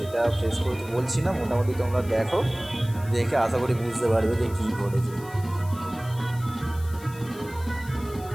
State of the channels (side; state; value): left; noise; hiss, 20 dB below the sound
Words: ফেস করতে বলছি না, মোটামুটি তোমরা দেখো, দেখে আশা করি বুঝতে পারবে যে কী ঘটেছে।